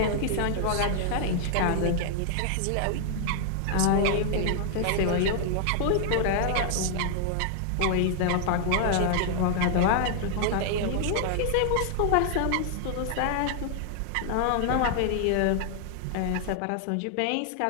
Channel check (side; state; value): both; different; correlation 0.00